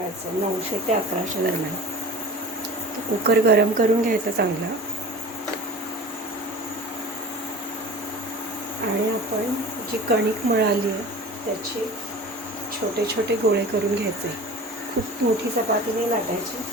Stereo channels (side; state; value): both; normal; correlation 0.38